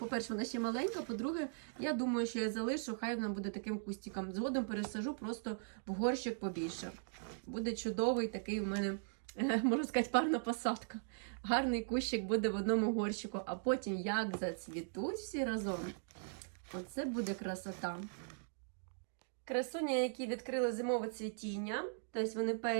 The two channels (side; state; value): left; silent; digital silence